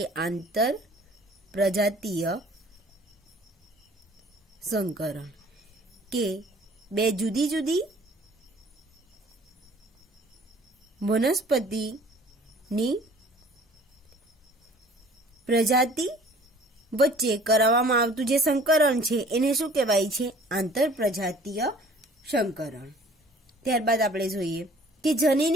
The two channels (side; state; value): both; normal; correlation 0.51